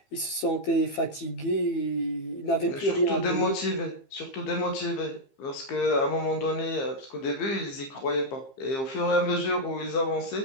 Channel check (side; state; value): right; late; 15 ms